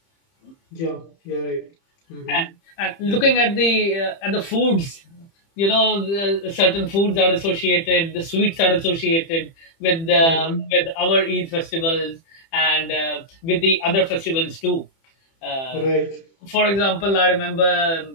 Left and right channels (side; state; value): right; late; 30 ms